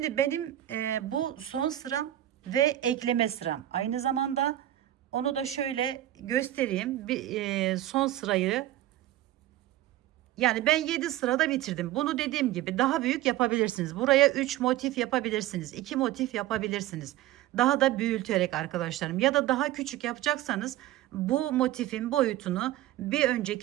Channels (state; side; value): quieter; left; 13.9 dB